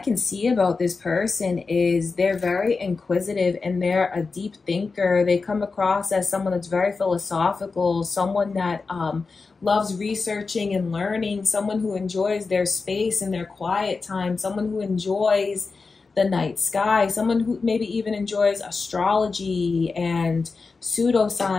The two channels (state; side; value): quieter; right; 4.3 dB